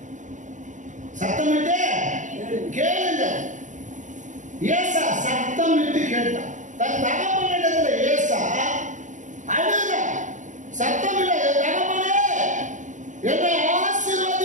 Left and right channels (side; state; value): left; late; 0.36 ms